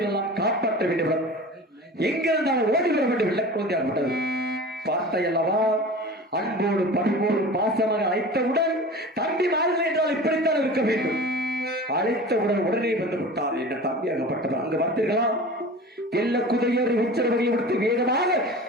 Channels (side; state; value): both; normal; correlation 0.36